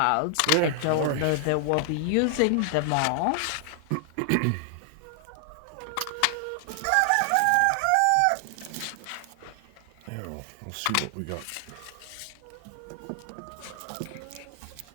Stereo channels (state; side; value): different; both; correlation 0.00